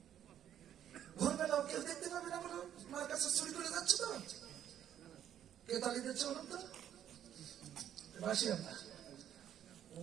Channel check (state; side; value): quieter; left; 10.4 dB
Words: ভোরবেলাও কেউ দেখতে পাবে না বলো, মার কাছে চুরি করে যাচ্ছে তো, কে তালি দিচ্ছে বলুন তো, বাসি আমরা। ও